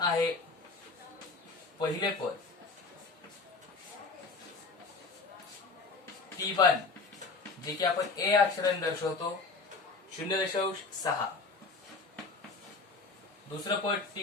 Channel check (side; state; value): right; quieter; 4.0 dB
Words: पहिले पद P1 जे की आपण A अक्षराने दर्शवतो 0.6, दुसरं पद